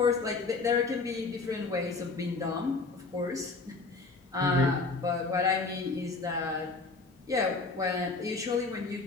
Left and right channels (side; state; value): right; quieter; 3.8 dB